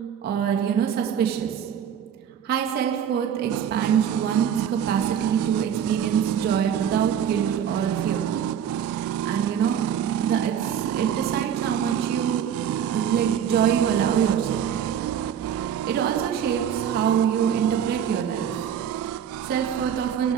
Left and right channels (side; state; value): left; quieter; 8.8 dB